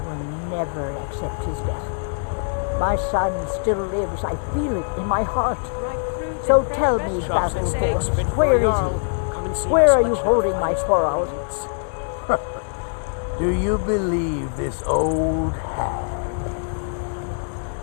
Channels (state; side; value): silent; right; 64 dB below the other